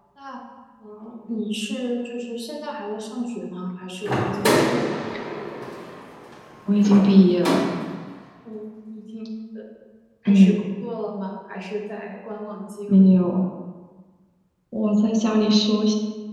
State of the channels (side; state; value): both; identical; correlation 1.00